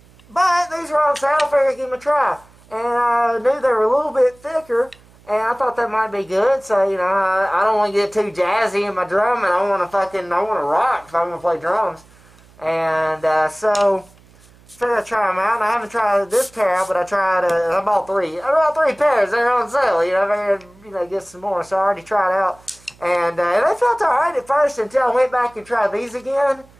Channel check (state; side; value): noise; right; hum, 27 dB below the sound